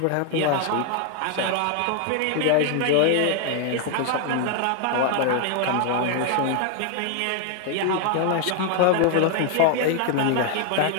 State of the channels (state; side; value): different; both; correlation 0.00